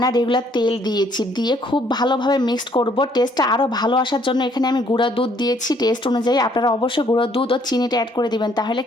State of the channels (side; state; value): both; normal; correlation 0.65